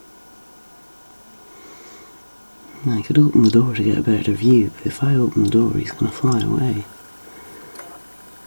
I could open the door to get a better view, but if I open the door, he's going to fly away.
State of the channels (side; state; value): both; inverted; correlation -1.00